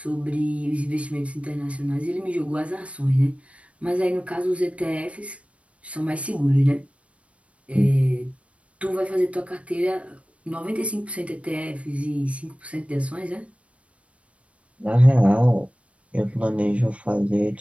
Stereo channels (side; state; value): left; late; 0.063 ms